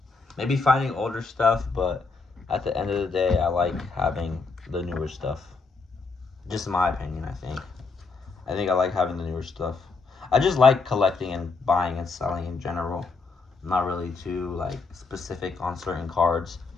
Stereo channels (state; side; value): quieter; right; 4.2 dB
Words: maybe finding older stuff, but at the end of the day, I like having the newer stuff. Just my opinion, I think. I think I like having the newer stuff. I just like collecting and buying and selling in general. I'm not really too like specific on certain cards.